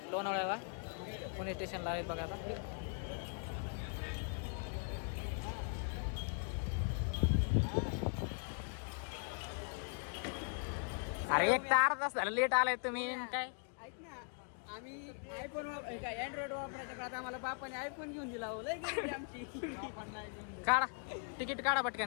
लोणावळ्याला, पुणे स्टेशनला आहेत बघा आता. अरे एक तार तास झालं लेट आलाय तुम्ही काय. ऐक ना, आम्ही आयफोन अँड्रॉइड वापरायच्या काळात आम्हाला बापाने आयफोन घेऊन दिला. हो लय गरीबी आमची. काढा तिकीट काढा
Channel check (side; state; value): right; silent; 51 dB below the other